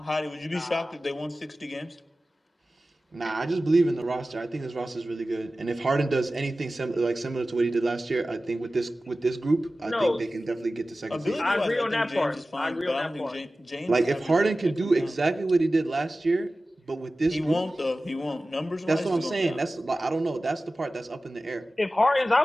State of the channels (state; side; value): normal; both; correlation 0.96